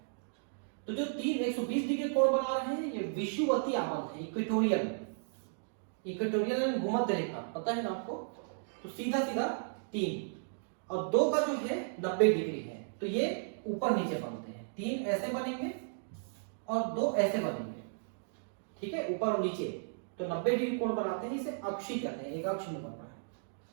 तो जो 3 120 डिग्री कोण बना रहे हैं ये विषुवतीय आबंध है, इक्वेटोरियल भूमध्य रेखा, पता है ना आपको। तो सीधा सीधा 3 और 2 का जो है 90 डिग्री है, तो ये ऊपर नीचे बनते हैं। 3 ऐसे बनेंगे और 2 ऐसे बनेंगे, ठीक है, ऊपर और नीचे, तो 90 डिग्री कोण बनाते हैं। इसे अक्षीय कहते हैं, एक अक्ष में बन रहा है।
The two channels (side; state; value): left; silent; digital silence